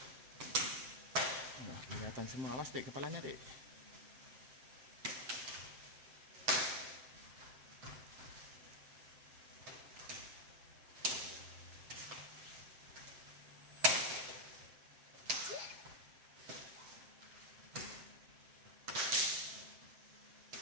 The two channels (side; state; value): left; late; 7.7 ms